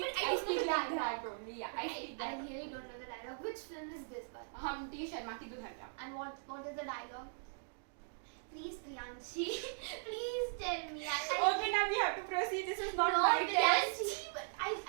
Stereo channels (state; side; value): silent; left; digital silence